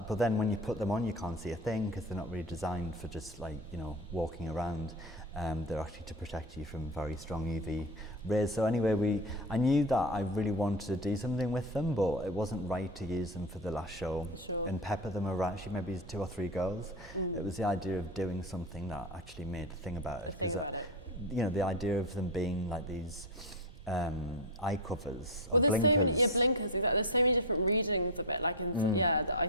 then when you put them on, you can't see a thing, because they're not really designed for just like, you know, walking around. They're actually to protect you from very strong UV rays. So anyway, I knew that I really wanted to do something with them, but it wasn't right to use them for the last show and pepper them around. She maybe 2 or 3 girls. It was the idea of doing something that actually made a thing about it, because you know, the idea of them being like these eye covers or blinkers. Blinkers, exactly. There's so many different readings of it, like that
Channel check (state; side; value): normal; both; correlation 0.18